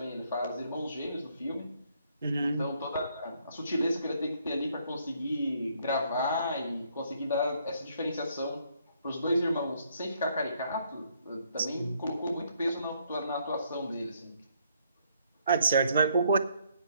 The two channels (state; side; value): inverted; both; correlation -0.69